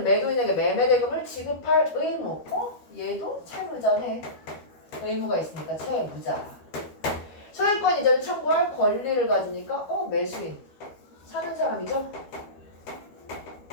매도인에게 매매대금을 지급할 의무. 얘도 채무자네. 의무가 있으니까 채무자. 소유권 이전을 청구할 권리를 가지니까 매수인. 사는 사람이죠?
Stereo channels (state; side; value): late; right; 12 ms